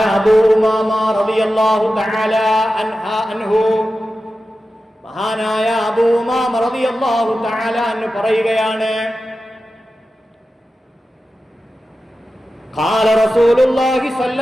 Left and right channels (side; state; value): both; normal; correlation 0.93